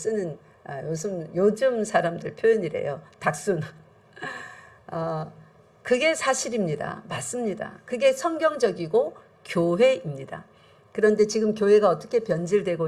요즘 사람들 표현이래요. 닥순. 그게 사실입니다. 맞습니다. 그게 성경적이고 교회입니다. 그런데 지금 교회가 어떻게 변질되고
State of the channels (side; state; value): both; identical; correlation 1.00